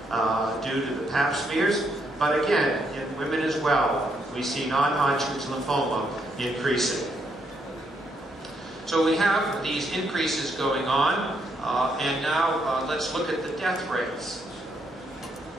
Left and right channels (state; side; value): normal; both; correlation 0.75